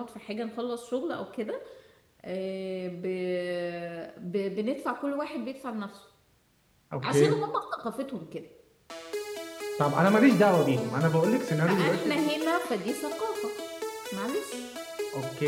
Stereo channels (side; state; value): both; identical; correlation 1.00